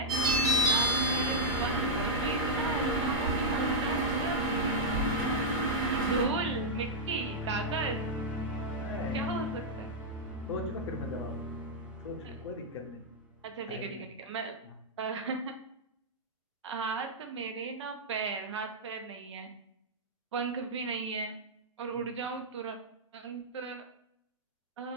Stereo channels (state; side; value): normal; both; correlation -0.07